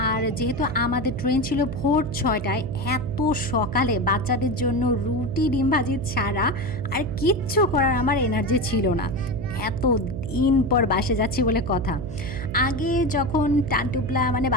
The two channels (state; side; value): noise; right; hum, 8 dB below the sound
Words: আর যেহেতু আমাদের ট্রেন ছিল ভোর 6টায়, এত সকালে বাচ্চাদের জন্য রুটি ডিম ভাজি ছাড়া আর কিচ্ছু করার আমার এনার্জি ছিল না। এত দিন পর বাসে যাচ্ছি বলে কথা। আগে যখন টানটুপলা মানে